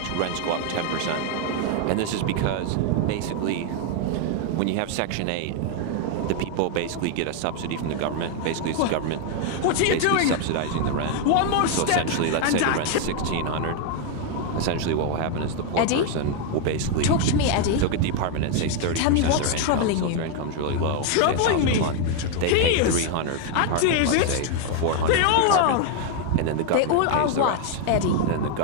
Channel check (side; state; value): both; different; correlation 0.00